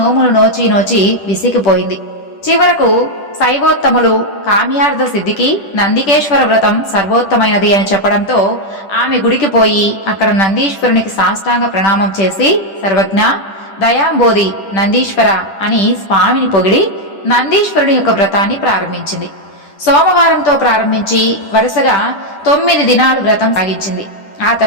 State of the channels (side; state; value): right; late; 10 ms